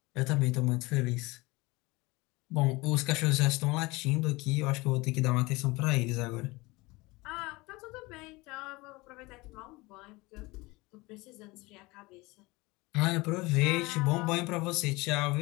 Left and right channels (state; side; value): quieter; right; 23.0 dB